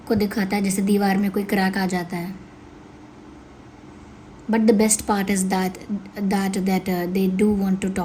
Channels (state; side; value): identical; both; correlation 1.00